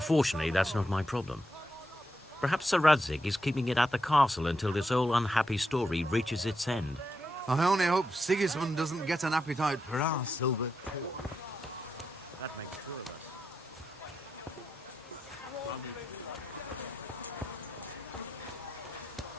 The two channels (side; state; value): both; normal; correlation 0.84